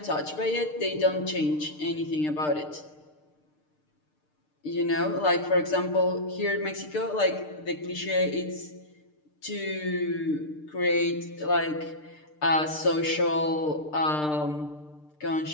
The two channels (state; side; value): late; right; 6.6 ms